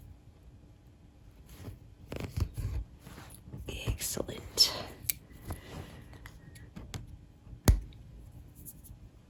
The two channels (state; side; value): identical; both; correlation 1.00